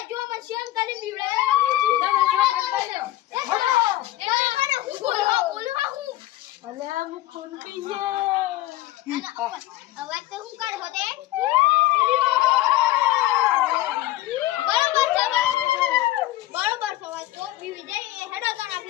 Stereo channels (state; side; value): quieter; right; 15.8 dB